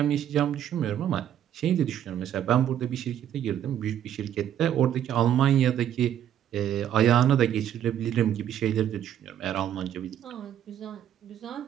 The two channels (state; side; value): quieter; left; 10.4 dB